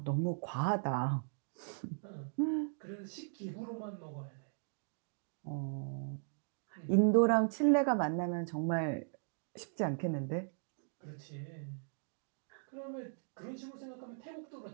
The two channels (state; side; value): silent; left; digital silence